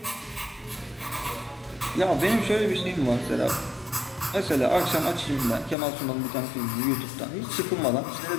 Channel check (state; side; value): drops out; right; at 5.8 s